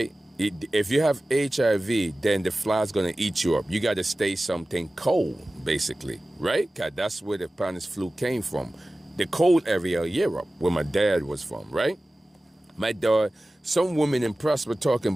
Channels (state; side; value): normal; both; correlation 0.96